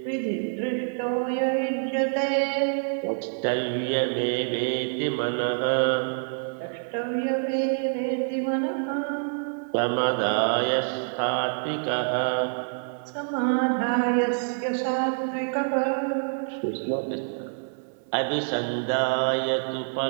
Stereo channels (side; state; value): left; silent; 58 dB below the other